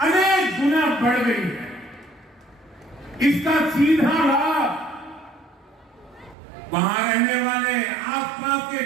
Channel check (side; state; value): left; drops out; at 6.4 s